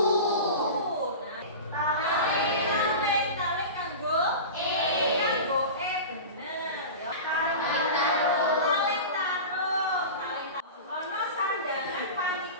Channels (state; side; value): inverted; both; correlation -0.30